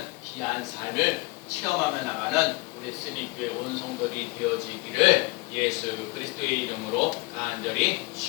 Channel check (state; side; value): quieter; right; 24.8 dB